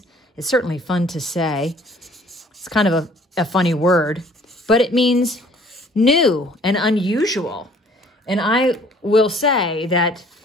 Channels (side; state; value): both; normal; correlation 0.56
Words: It's certainly fun to say. It's kind of a funny word, but it means new and unusual. And I will say that